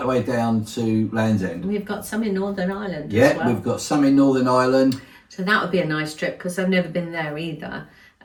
the way down to Land's End. We've got some in Northern Ireland as well. We've got some in Northern Ireland. So that would be a nice trip because I've never been there either.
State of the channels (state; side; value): identical; both; correlation 1.00